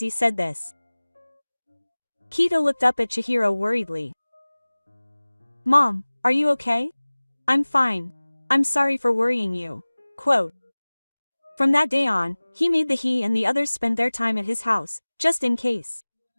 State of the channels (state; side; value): inverted; both; correlation -1.00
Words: said this. Kito looked up at Chihiro worriedly. "Mom, are you okay?" "I'm fine. I'm sorry for worrying you." Quote. From that day on, he made he and the others spend their time at his house, just in case.